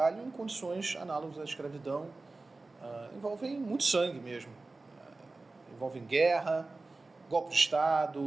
em condições análogas à escravidão, envolvem muito sangue mesmo, envolvem guerra, golpe de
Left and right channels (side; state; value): left; quieter; 3.4 dB